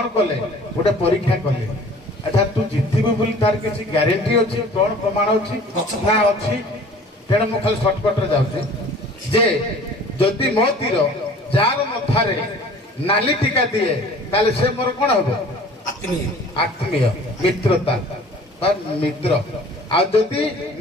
कले गोटे परीक्षा कले अच्छा तू जितबू बोली तार किसी ग्यारंटी अच्छी कौन प्रमाण अच्छी ना अच्छी तेणु मुझे खाली सर्टकट रे जाऊँगी जे जदि मो तीर जार मथारे नाली टीका दिए ताले से मोर कौन हम आत्मीय मित्रता मित्र आदि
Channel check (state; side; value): normal; both; correlation 0.48